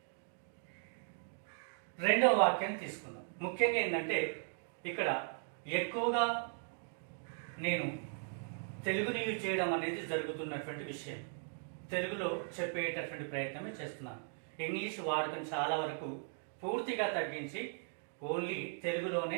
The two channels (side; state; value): left; silent; 52 dB below the other